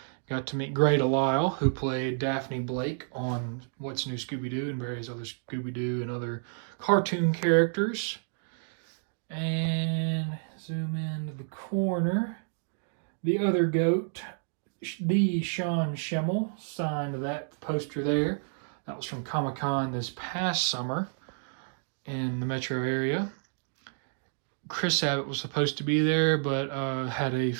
Got to meet Grey DeLisle, who played Daphne Blake on What's New Scooby-Doo and various other Scooby-Doo and other cartoon characters. And zoom into the corner. The other goat, the Sean Schemmel, signed that poster there. That was from Comic-Con this past summer in the metro area. Chris Sabat was supposed to be there, but had a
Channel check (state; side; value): silent; left; digital silence